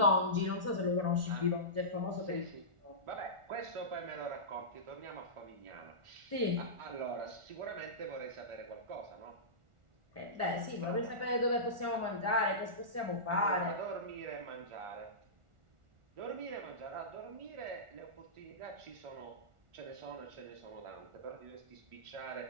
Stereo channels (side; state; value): left; late; 1.4 ms